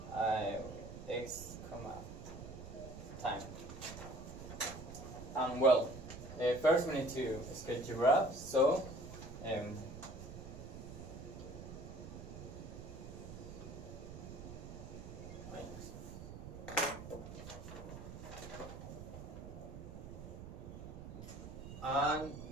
x, time. And well, first we need to sketch the graph. So and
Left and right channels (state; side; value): noise; right; rumble, 11 dB below the sound